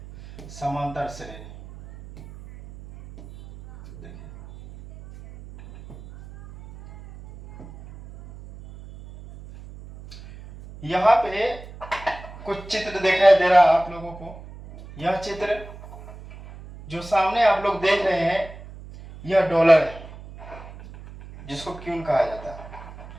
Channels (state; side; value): noise; right; hum, 16 dB below the sound